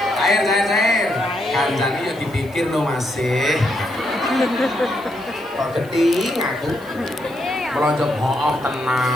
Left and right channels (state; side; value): noise; right; hiss, 25 dB below the sound